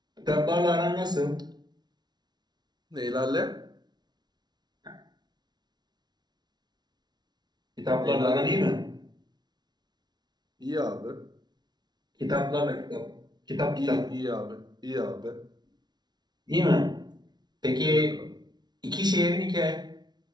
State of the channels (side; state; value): left; late; 0.20 ms